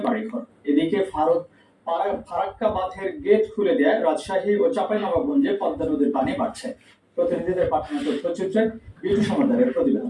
বাড়িঘর। এদিকে ফারাক্কা বাঁধের গেট খুলে দেয় রাজশাহী ও চাঁপাইনবাবগঞ্জে পদ্মা নদীর পানি বাড়ছে। প্রতিনিধিদের পাঠানো তথ্যচিত্রে বিটু সমাদারের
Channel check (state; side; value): identical; both; correlation 1.00